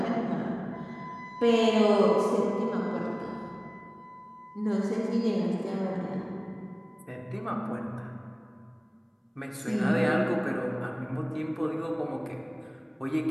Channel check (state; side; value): identical; both; correlation 1.00